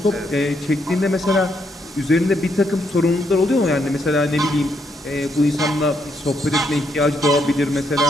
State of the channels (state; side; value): normal; both; correlation 0.76